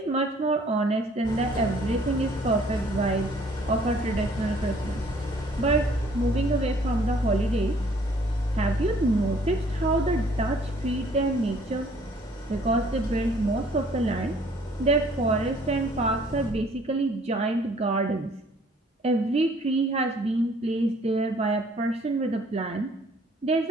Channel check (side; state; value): both; normal; correlation 0.58